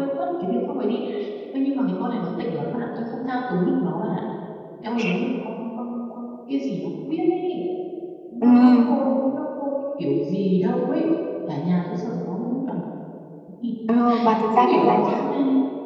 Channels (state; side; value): identical; both; correlation 1.00